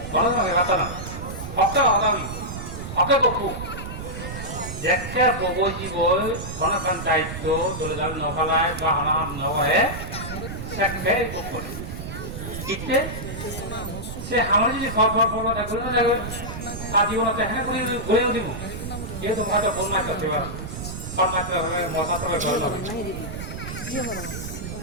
Kalau nak kata nak, apa ada ni? Apa kau? Jika bobo jiwol, mana kan daito, dulu dalam novelai, bahana novel, sekali bobo. Kita, se hamil jadi forward dah guna dah guna. Tadi orang teh ni boleh dimu. Dia tu ada pun nak kerja. Pernah kerja, masa tu kerja.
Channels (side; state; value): right; noise; rumble, 8 dB below the sound